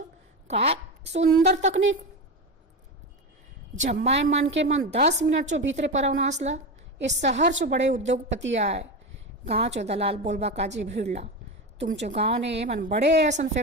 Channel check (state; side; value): normal; both; correlation 0.19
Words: का सुंदर तकनीक जब माय मन के मन 10 मिनट चो भीतरे परवना असला इस शहर चो बड़े उद्योगपति आए गाँव चो दलाल बोलबा काजी भीड़ला तुमचो गाँव ने मन बड़े ऐसा